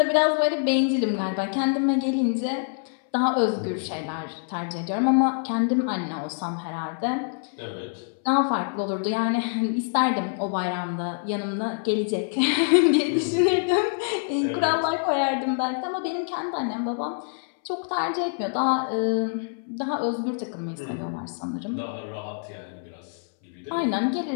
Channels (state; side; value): silent; right; 61 dB below the other